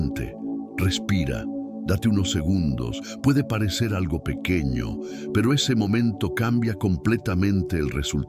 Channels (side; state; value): both; identical; correlation 1.00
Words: respira, date unos segundos. Puede parecer algo pequeño, pero ese momento cambia completamente el